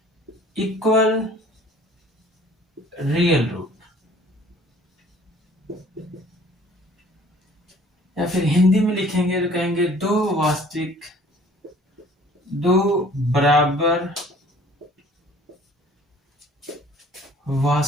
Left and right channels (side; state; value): both; normal; correlation 0.53